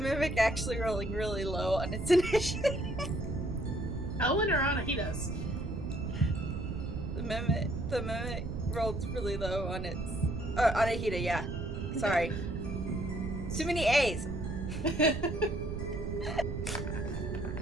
actually rolling really low on its initiative. Elwyn or Anahidas? The Mimic rolled really low on its... Anahita, yeah. Sorry. Too many A's.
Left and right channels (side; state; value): right; noise; rumble, 5 dB below the sound